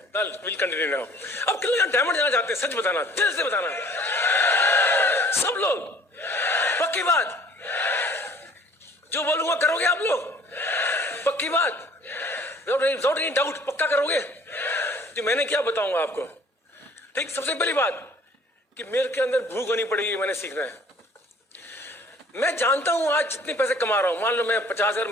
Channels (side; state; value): both; normal; correlation 0.53